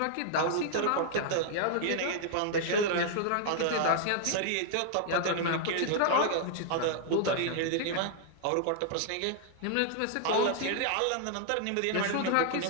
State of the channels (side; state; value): both; different; correlation -0.01